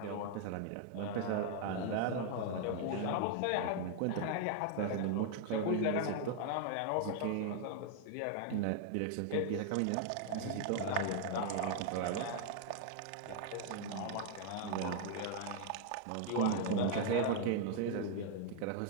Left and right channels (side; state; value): both; different; correlation 0.00